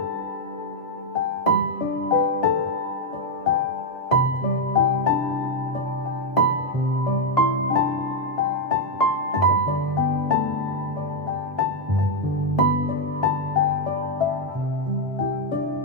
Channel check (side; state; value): both; normal; correlation 0.02